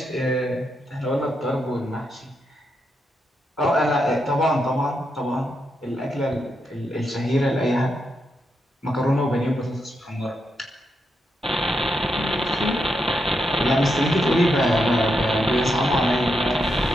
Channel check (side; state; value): both; normal; correlation 0.83